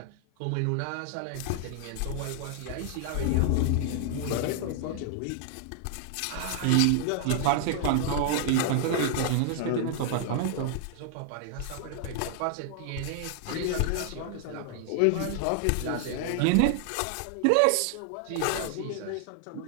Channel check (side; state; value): both; different; correlation 0.00